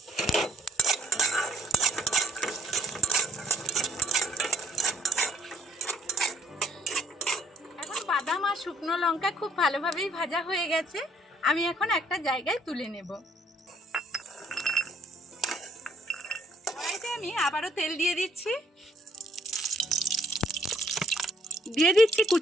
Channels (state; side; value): normal; both; correlation 0.64